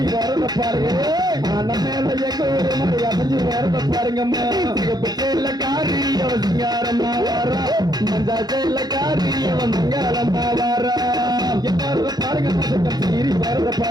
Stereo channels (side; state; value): left; late; 0.19 ms